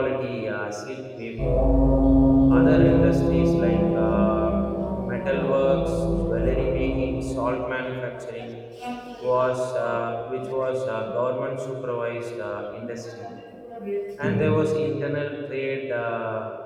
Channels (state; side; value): identical; both; correlation 1.00